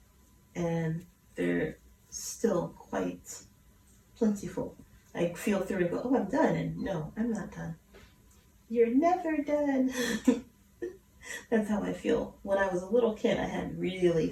and they're still quite plentiful. I feel through and go, oh, I'm done, and no, I'm not done. You're never done. That's how I feel. When I was a little kid, I had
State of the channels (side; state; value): both; identical; correlation 1.00